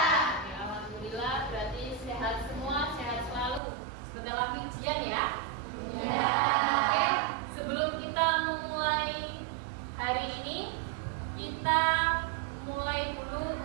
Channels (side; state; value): left; drops out; at 3.6 s